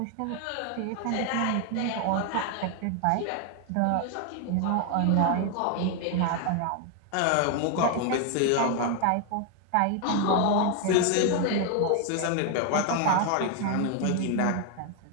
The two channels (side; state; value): both; different; correlation 0.01